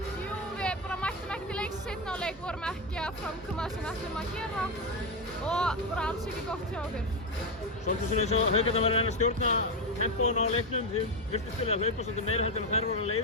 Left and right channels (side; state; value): both; normal; correlation 0.09